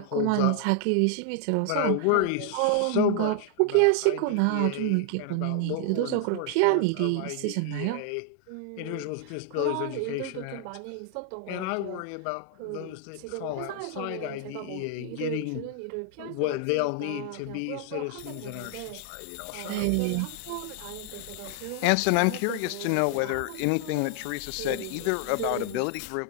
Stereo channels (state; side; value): different; both; correlation 0.00